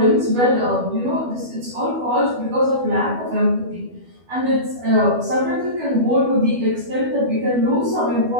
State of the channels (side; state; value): left; late; 12 ms